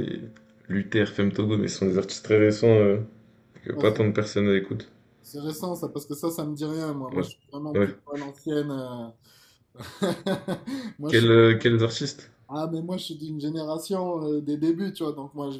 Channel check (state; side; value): identical; both; correlation 1.00